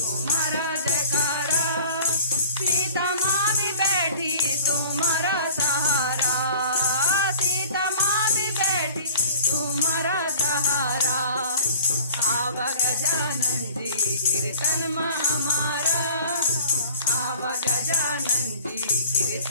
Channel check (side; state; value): both; inverted; correlation -0.46